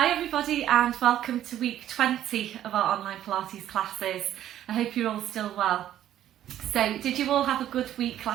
everybody and welcome to week 20 of our online Pilates classes. I hope you're all still well. So did you all have a good week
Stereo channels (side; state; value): left; quieter; 11.8 dB